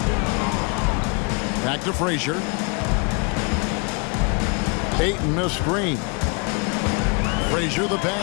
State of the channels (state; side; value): quieter; right; 33.6 dB